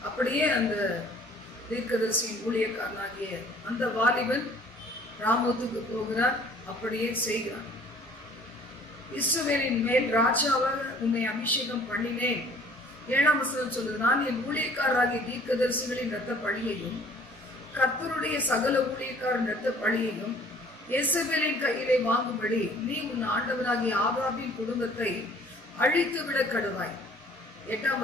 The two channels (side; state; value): both; normal; correlation 0.53